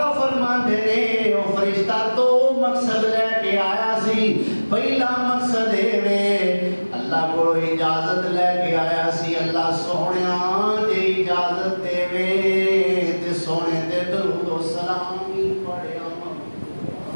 فرماندے نے او فرشتہ تو مقصد لے کے آیا سی پہلا مقصد ہے اللہ کو اجازت لے کے آیا سی اللہ سونیاں دے اجازت دے وے تے سونے تے درود و سلام ہی پڑھیا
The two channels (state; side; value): inverted; both; correlation -1.00